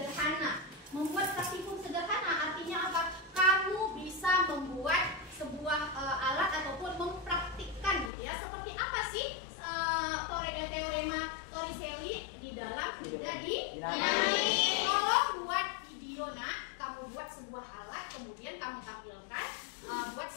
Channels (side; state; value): right; drops out; at 8.1 s